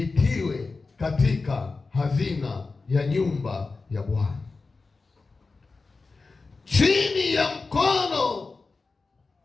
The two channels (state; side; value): quieter; right; 4.0 dB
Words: katika hazina ya nyumba ya Bwana, chini ya mkono